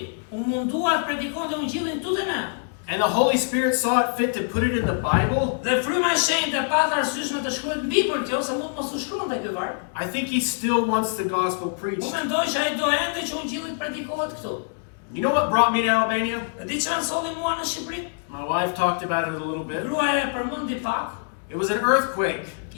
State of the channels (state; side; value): silent; right; 62 dB below the other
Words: u mundua të predikonte ungjillin këtu te ne, and the Holy Spirit saw it fit to put it in the Bible, dhe fryma e shenjtë pata arsyeshme të shkruajë mbi për kjo, se mund mos u shkruante ky varg. I think he still wants the gospel Unë preached. mendoj që ai do ende që ungjilli predikohet këtu. You know what brought me to Albania? Dhe di çfarë solli mua në Shqipëri? My wife talked about it a little bit. Gruaja e përmendi pak, It was an earthquake.